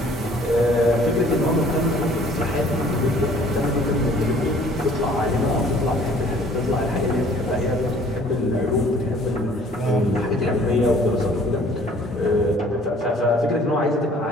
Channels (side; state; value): both; normal; correlation 0.55